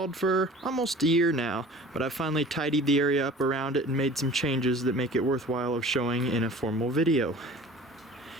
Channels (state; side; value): normal; both; correlation 0.44